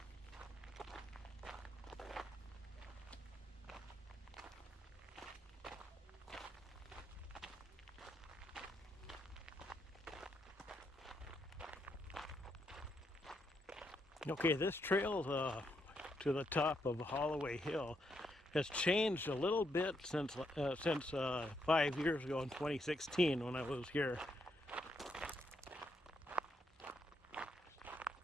Okay, this trail to the top of Hallaway Hill has changed a little bit since 5 years ago in 2016 when I was here.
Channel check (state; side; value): normal; both; correlation 0.78